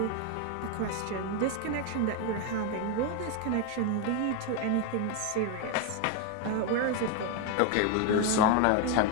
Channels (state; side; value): different; both; correlation 0.01